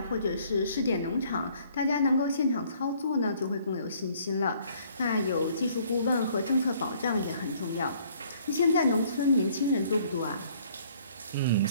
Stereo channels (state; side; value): inverted; both; correlation -0.61